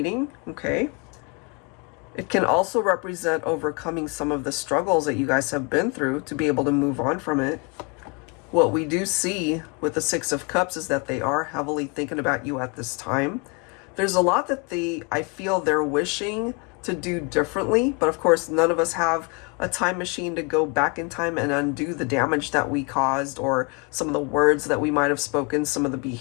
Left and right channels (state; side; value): quieter; right; 32.3 dB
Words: okay? It can also represent overcoming some of the struggles that you guys have been through to be able to move on from it. What we do see with the Six of Cups is that they are heavily thinking about you at this time. There's a lot that I feel they're wishing to do differently, but of course none of us have a time machine to go back in time and undo the damage that we caused, or some of the words that we might have spoken, some of the